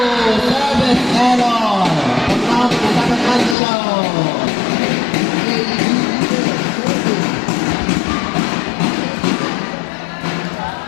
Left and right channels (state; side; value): drops out; right; at 3.6 s